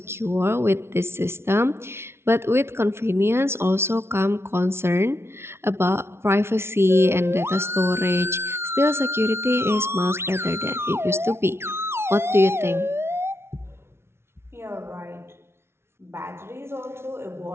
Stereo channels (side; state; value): left; late; 0.12 ms